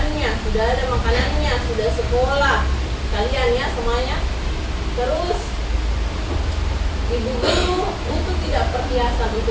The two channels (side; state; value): both; identical; correlation 1.00